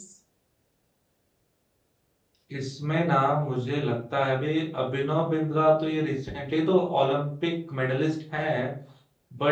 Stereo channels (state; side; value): identical; both; correlation 1.00